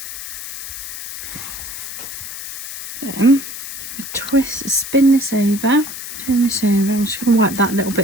Then we twist, spin this over, turn this over. I'm just going to wipe that little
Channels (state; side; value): noise; left; hiss, 8 dB below the sound